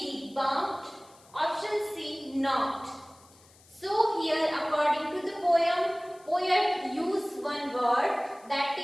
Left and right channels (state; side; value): noise; left; hiss, 27 dB below the sound